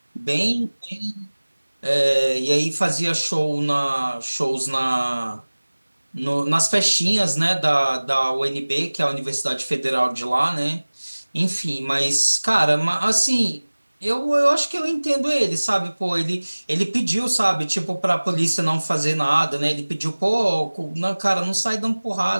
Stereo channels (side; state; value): both; inverted; correlation -1.00